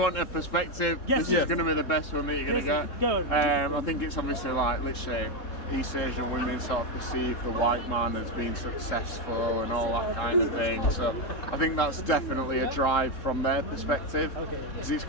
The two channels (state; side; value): late; right; 3.7 ms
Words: want a perspective, Yes. this Yes. is going to be the best one that you're going to Yes, get. go on. I think it's obviously like literally East Asian women sort of perceive the white man as being successful and all that kind of thing. So I think that's definitely a drive from their perspective. Because it's